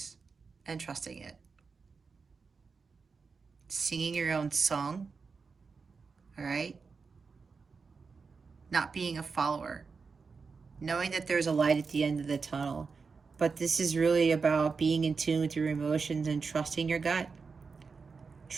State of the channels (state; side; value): quieter; left; 4.9 dB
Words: And trusting it. singing your own song, all right? Not being a follower, knowing that there's a light at the end of the tunnel. But this is really about being in tune with your emotions and trusting your gut,